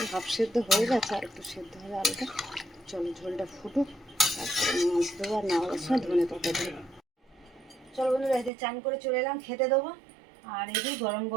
হাফ সেদ্ধ হয়ে গেছে, আর একটু সেদ্ধ হবে আলুটা। চলো ঝোলটা ফুটুক, তারপরে মাছ দেবো, আর নামাবার সময় ধনে পাতা দেবো। চলো বন্ধুরা, এতে চান করে চলে এলাম, খেতে দেবো। আর এই যে গরম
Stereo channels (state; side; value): drops out; left; at 8.5 s